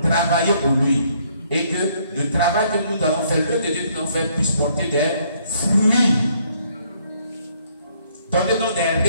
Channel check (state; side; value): inverted; both; correlation -0.67